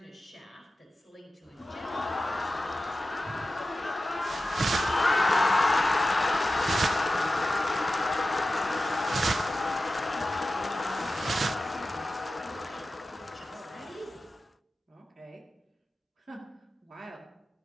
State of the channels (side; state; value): both; normal; correlation 0.94